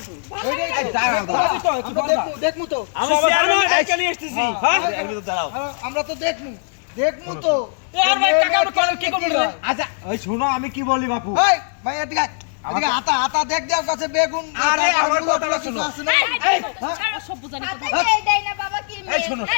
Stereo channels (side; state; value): right; silent; digital silence